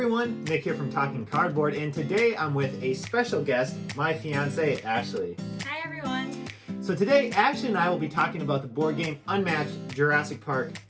Nick here from Talking Cardboard, and today I'm with a special guest, my fiance Ashley. Hi everyone. So today, Ashley and I will be talking about the board game Unmatched Jurassic Park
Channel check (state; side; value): identical; both; correlation 1.00